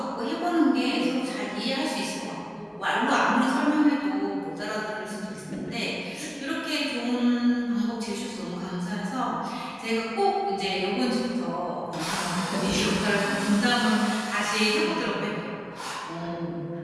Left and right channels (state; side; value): identical; both; correlation 1.00